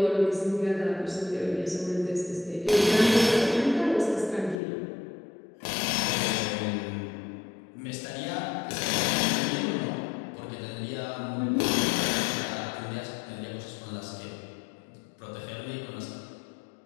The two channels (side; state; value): right; drops out; at 4.6 s